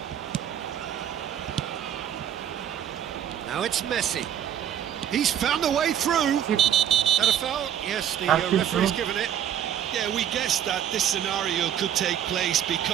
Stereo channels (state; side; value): quieter; left; 9.8 dB